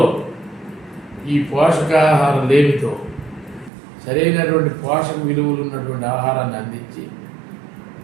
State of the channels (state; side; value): drops out; left; at 3.7 s